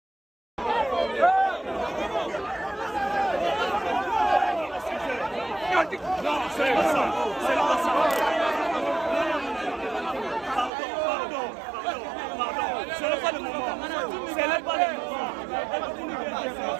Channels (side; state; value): left; drops out; at 10.7 s